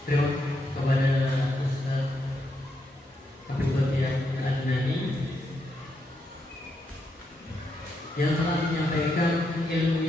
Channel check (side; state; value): both; normal; correlation 0.80